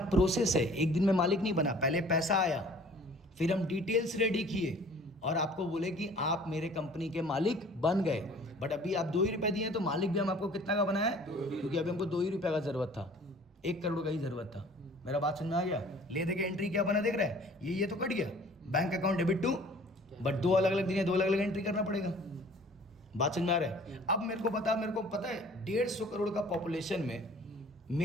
प्रोसेस है। एक दिन में मालिक नहीं बना, पहले पैसा आया, फिर हम डिटेल्स रेडी किए और आपको बोले कि आप मेरे कंपनी के मालिक बन गए। बट अभी आप ₹2 दिए तो मालिक भी हम आपको कितना का बनाया है? क्योंकि अभी हमको ₹2 का जरूरत था, 1 करोड़ का ही जरूरत था। मेरा बात समझ में आ गया? ले दे के एंट्री क्या बना देख रहा है? ये तो कट गया, bank account debit to, but 2 अलग अलग दिन है, 2 अलग अलग एंट्री करना पड़ेगा। बात समझ में आ रहा है? अब मेरे को पता है 150 करोड़ का पॉपुलेशन में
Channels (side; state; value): both; normal; correlation 0.50